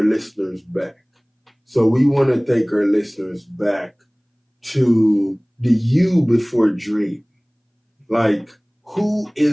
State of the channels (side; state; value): both; identical; correlation 1.00